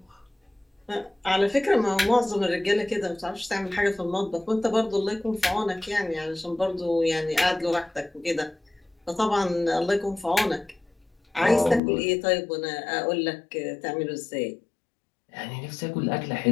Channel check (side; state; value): right; drops out; at 11.8 s